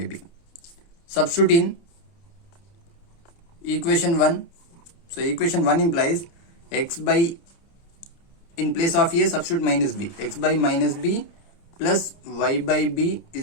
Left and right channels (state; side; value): late; right; 29 ms